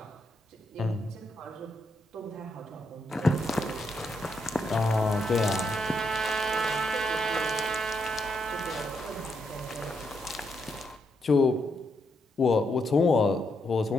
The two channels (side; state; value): both; normal; correlation 0.79